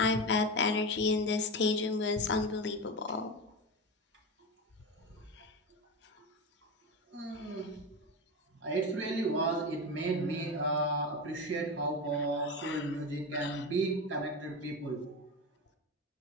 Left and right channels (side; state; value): both; normal; correlation 0.21